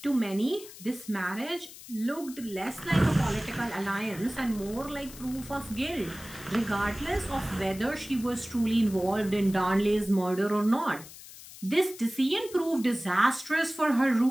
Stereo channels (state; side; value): noise; left; hiss, 16 dB below the sound